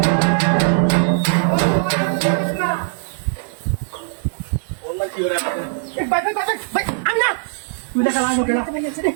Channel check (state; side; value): silent; left; digital silence